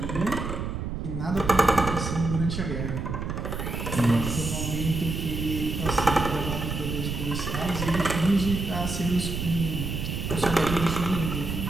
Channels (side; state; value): right; noise; rumble, 4 dB below the sound